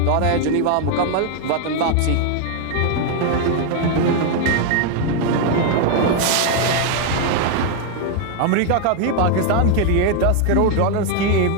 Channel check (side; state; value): both; different; correlation 0.00